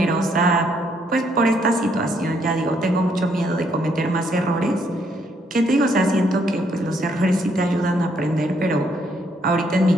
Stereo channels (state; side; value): normal; both; correlation 0.71